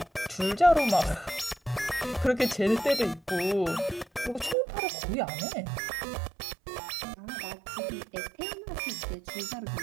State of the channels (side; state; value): left; drops out; at 4.5 s